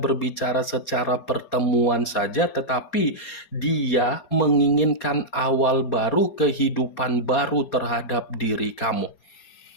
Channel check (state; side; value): late; right; 4.3 ms